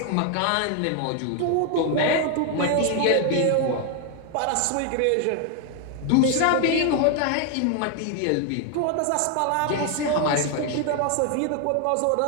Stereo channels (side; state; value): both; different; correlation 0.00